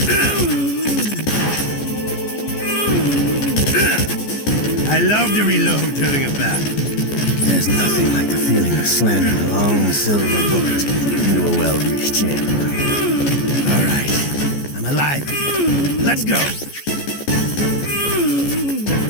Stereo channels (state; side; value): late; right; 14 ms